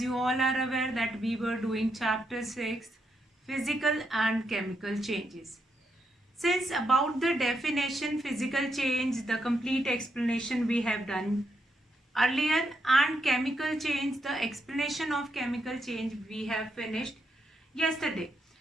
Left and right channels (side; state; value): both; normal; correlation 0.80